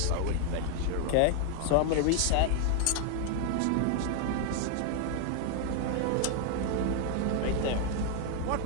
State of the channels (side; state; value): both; different; correlation 0.00